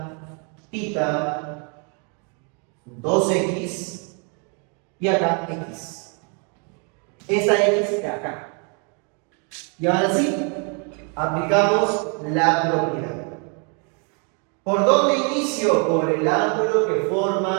tita. 2x y acá x. Esta x de acá. Y ahora sí, aplicamos la propiedad. ¿Por dónde inicio? Por el ángulo que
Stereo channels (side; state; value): left; quieter; 37.2 dB